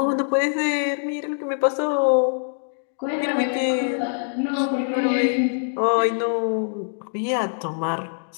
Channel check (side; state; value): right; silent; digital silence